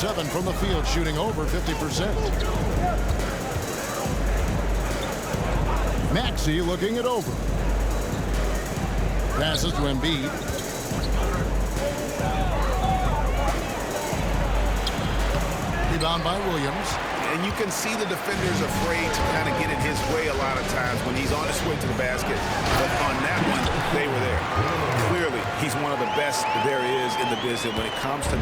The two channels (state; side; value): identical; both; correlation 1.00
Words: from the field, shooting over 50%. Maxey looking it over. Passes to Embiid. Rebound by Williams. And you can see the defenders afraid to kind of get in his way a lot of times when he's on his way to the basket. But on that one, they were there. Clearly, he's one of the best there is in the business when it comes to